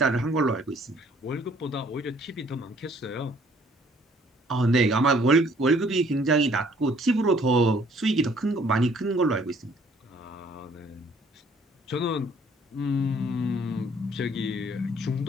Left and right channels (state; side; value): normal; both; correlation 0.60